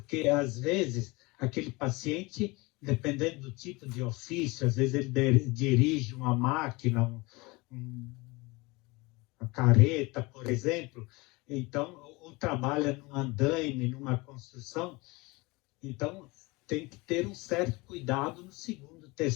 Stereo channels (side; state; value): right; quieter; 24.5 dB